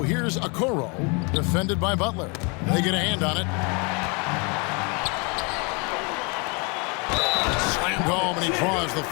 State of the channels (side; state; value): right; quieter; 31.8 dB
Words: here's Okoro, defended by Butler. They get a hand on it. Slammed home, and he draws the